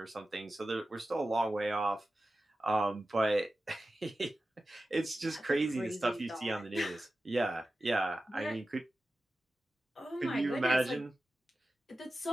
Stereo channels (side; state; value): both; normal; correlation 0.94